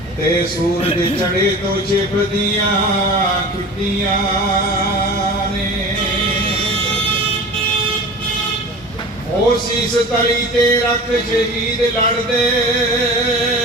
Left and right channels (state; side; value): normal; both; correlation 0.36